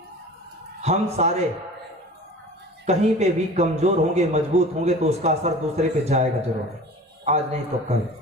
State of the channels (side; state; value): both; normal; correlation 0.40